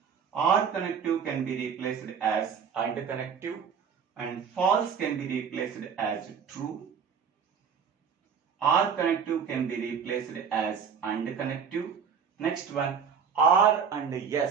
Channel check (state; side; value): quieter; left; 6.7 dB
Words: R connective can be replaced as AND connective, and false can be replaced as true. R connective can be replaced as AND connective. Next one, R and